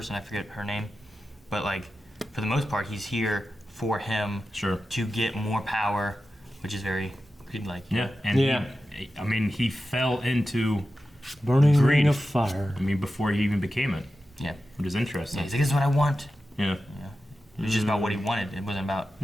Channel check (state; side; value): normal; both; correlation 0.92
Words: I forget her name, but like for the most part, he's here for him to get more power, which is very Greed-like. Yeah, and he fell into burning greed. ring of fire. I mean, before he even became it. Yeah, which is interesting. Yeah, he's like, "This is what I want." Yeah. It was just about what he wanted. It wasn't about